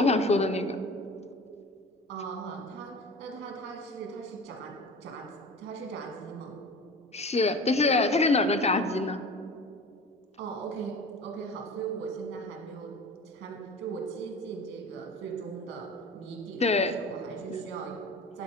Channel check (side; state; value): both; normal; correlation 0.38